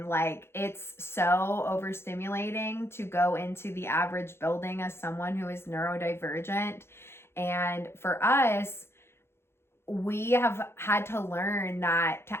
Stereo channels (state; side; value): late; right; 0.12 ms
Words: like, it's so overstimulating to go into the average building as someone who is neurodivergent. And for us, we have had to learn that to